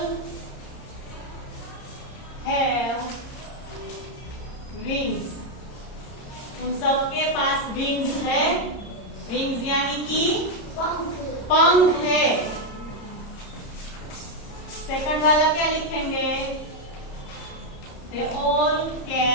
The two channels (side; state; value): right; late; 30 ms